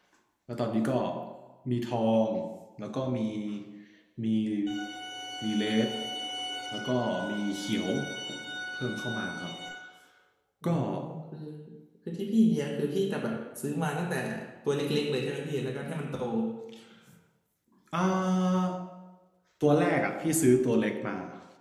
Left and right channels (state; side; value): identical; both; correlation 1.00